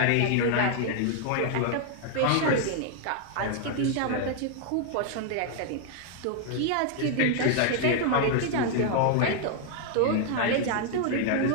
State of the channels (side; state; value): both; different; correlation 0.00